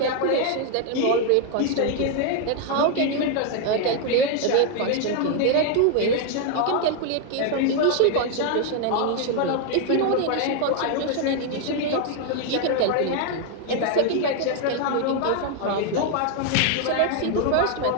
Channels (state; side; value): different; both; correlation 0.01